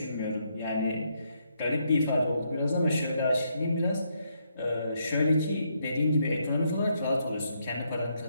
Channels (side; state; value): both; inverted; correlation -0.76